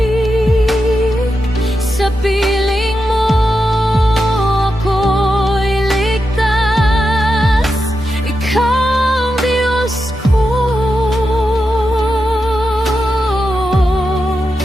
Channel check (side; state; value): both; normal; correlation 0.88